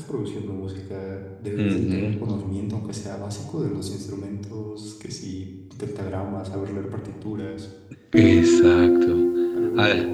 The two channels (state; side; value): identical; both; correlation 1.00